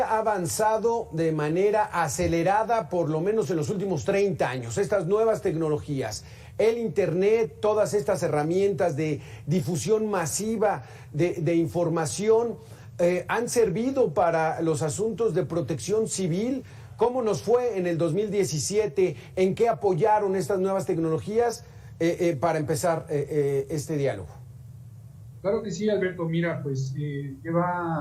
ha avanzado de manera acelerada, por lo menos en los últimos 30 años. Estas nuevas tecnologías, el Internet, todas estas herramientas de difusión masiva de información, han servido para los asuntos de protección civil. ¿Cómo nos fue en el 2017? ¿En qué apoyaron estas nuevas tecnologías para empezar este diálogo? Claro que sí, Alberto. Mira, pues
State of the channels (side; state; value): both; identical; correlation 1.00